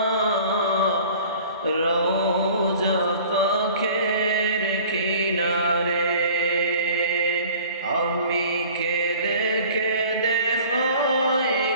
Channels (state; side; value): inverted; both; correlation -0.47